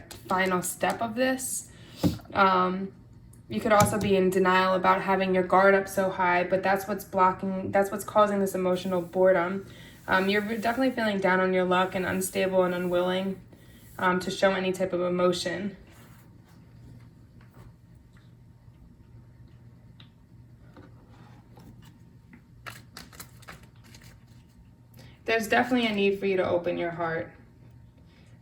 final step of this. You could also be in denial about having your guard up so high, but that's what's blocking, that's what's causing this emotional boredom. You're definitely feeling down on your luck and unstable and unwilling to show any type of emotion. There's definitely a need for you to open your heart.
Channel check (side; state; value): both; identical; correlation 1.00